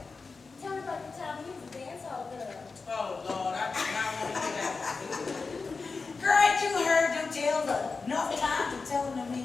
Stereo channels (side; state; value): right; quieter; 4.4 dB